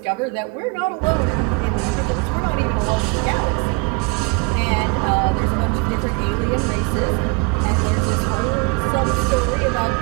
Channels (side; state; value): left; quieter; 29.8 dB